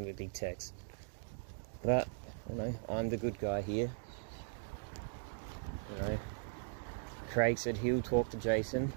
him a big text. But, you know, I'm the good guy here. You know, Craig said he'll talk to Jason,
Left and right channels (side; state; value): left; silent; digital silence